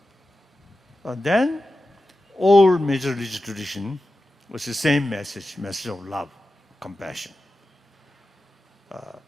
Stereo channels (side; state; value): both; normal; correlation 0.93